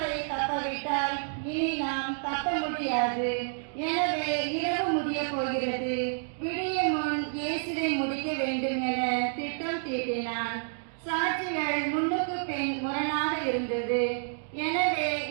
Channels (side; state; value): left; silent; digital silence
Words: தப்பவிட்டால் இனி நாம் தப்ப முடியாது. எனவே இரவு முடிய போகிறது. விடியும் முன் இயேசுவை முடிக்க வேண்டும் என திட்டம் தீட்டினான். சாட்சிகள் முன்னுக்கு பின் முரணாக இருந்தது. எனவே